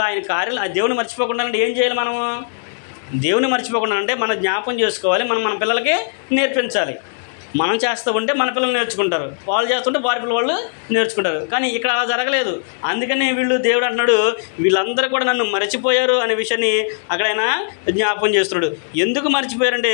ఆయన కార్యాలు ఆ దేవుని మర్చిపోకుండా అంటే ఏం చేయాలి? మనము దేవుని మర్చిపోకుండా అంటే మనం జ్ఞాపకం చేసుకోవాలి, మనం మన పిల్లలకి నేర్పించాలి. మనం చేస్తూ ఉంటే మన పిల్లలు నేర్చుకుంటారు, వాళ్ళు చేస్తుంటే వారి పిల్లలు వాళ్ళు నేర్చుకుంటారు. కానీ ఇక్కడ అలా జరగలేదు. అందుకనే దేవుడు అంటున్నాడు, వీళ్ళందరూ కూడా నన్ను మర్చిపోయారు అనే విషయాన్ని అక్కడ ఆయన జ్ఞాపకం చేస్తున్నాడు. ఎందుకు మర్చిపోయారంటే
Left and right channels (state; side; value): silent; right; digital silence